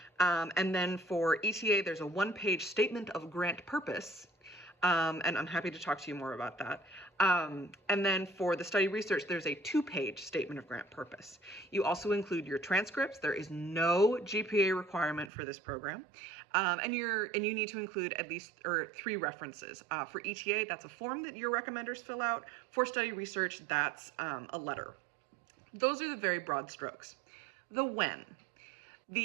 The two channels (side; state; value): left; drops out; at 15.3 s